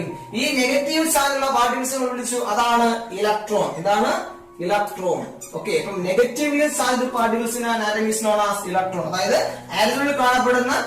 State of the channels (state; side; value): identical; both; correlation 1.00